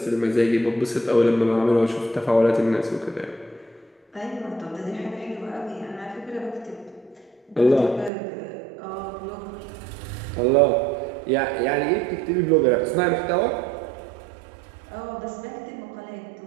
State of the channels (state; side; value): drops out; left; at 8.1 s